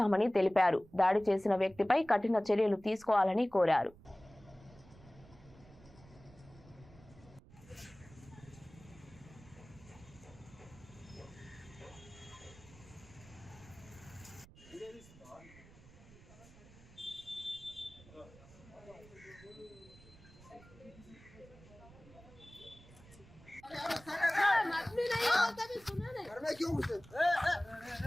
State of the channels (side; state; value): right; noise; rumble, 22 dB below the sound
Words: తెలిపారు. దాడి చేసిన వ్యక్తిపై కఠిన చర్యలు తీసుకోవాలని కోరారు.